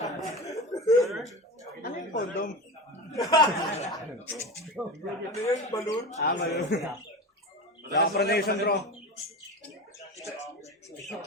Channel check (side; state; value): both; normal; correlation 0.27